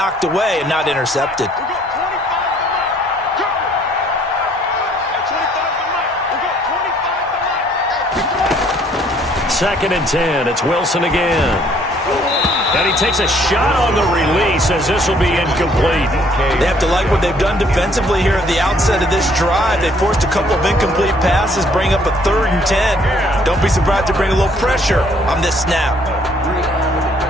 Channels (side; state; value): both; normal; correlation 0.62